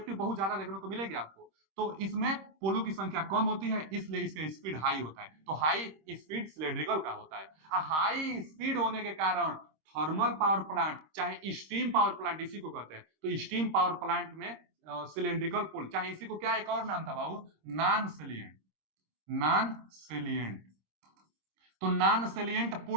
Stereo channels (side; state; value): left; late; 26 ms